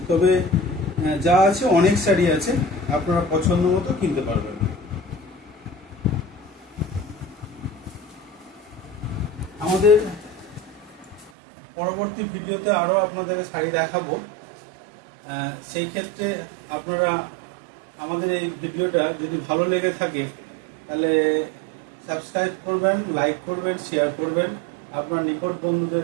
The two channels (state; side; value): drops out; left; at 11.3 s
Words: তবে যা আছে অনেক শাড়ি আছে, আপনারা পছন্দ মতো কিনতে পারবেন। আমাদের পরবর্তী ভিডিওতে আরও আপনাদেরকে শাড়ি দেখাবো। সেই ক্ষেত্রে আপনারা আমাদের এই ভিডিওটা যদি ভালো লেগে থাকে তাহলে সাবস্ক্রাইব করবেন, লাইক করবেন, শেয়ার করবেন, আপনার নিকট